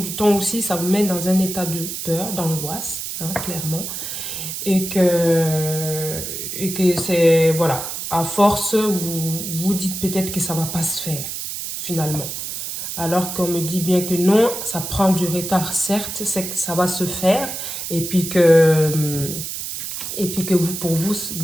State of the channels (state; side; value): noise; right; hiss, 6 dB below the sound